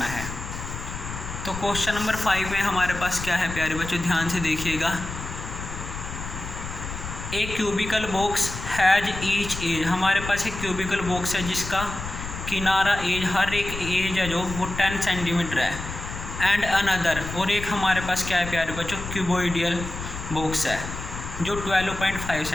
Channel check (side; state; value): left; noise; rumble, 8 dB below the sound